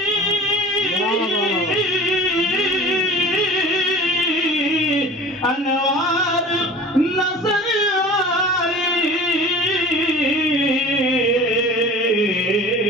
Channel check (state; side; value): normal; both; correlation 0.40